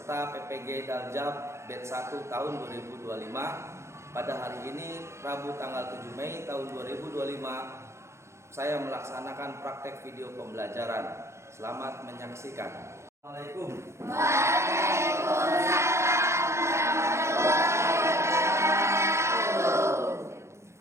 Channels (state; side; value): late; left; 0.13 ms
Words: PPG Daljab Batch 1 tahun 2025. Pada hari ini, Rabu tanggal 7 Mei tahun 2025, saya melaksanakan praktek video pembelajaran. Selamat menyaksikan. Assalamualaikum. Waalaikumsalam warahmatullahi wabarakatuh.